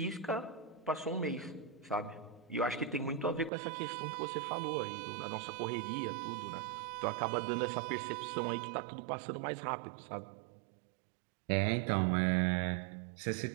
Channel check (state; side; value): drops out; left; at 3.5 s